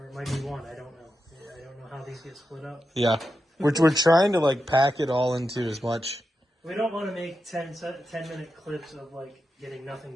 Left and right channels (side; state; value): both; normal; correlation 0.89